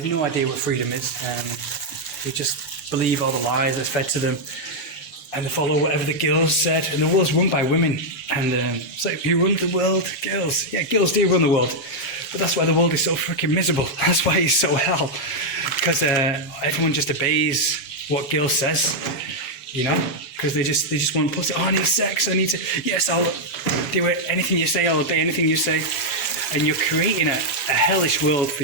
no idea what freedom is. They just believe all the lies that's fed to them, and they follow whatever the girls said. And the world's run by women. And it's like, who runs the world? Girls. Yeah, girls do run the world. But that's why the world is so freaking miserable. That's why it's so hell. Because everyone just obeys what girl says, because they just want pussy. Oh, I need sex. I need to. Yes, I'll do it. Anything you say, I'll obey anything you say. And you're creating a hellish world for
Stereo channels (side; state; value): right; late; 6.2 ms